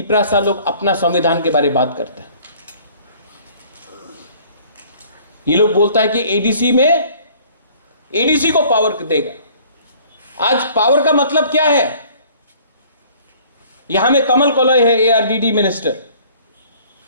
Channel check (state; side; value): inverted; both; correlation -0.54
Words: लोग अपना संविधान के बारे में बात करते हैं। ये लोग बोलता है कि एडीसी को पावर देगा। आज पावर का मतलब क्या है? यहां में कमल कोलय है, एआरडीडी मिनिस्टर।